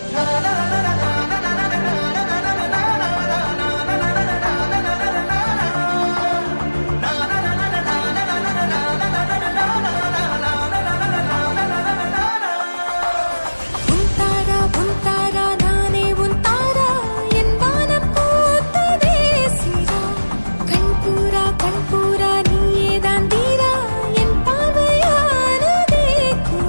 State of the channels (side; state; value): both; inverted; correlation -1.00